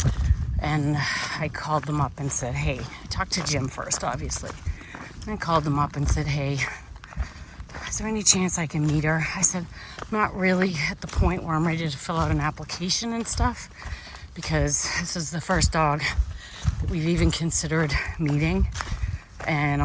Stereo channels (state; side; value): identical; both; correlation 1.00